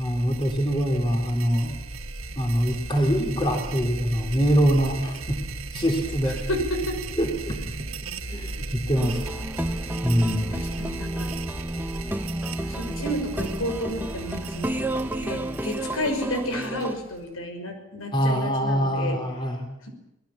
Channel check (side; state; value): both; normal; correlation 0.72